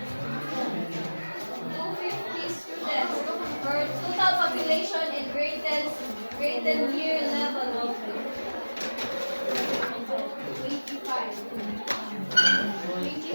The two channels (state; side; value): inverted; both; correlation -1.00